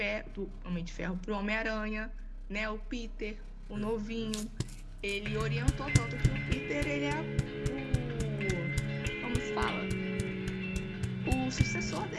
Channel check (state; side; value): identical; both; correlation 1.00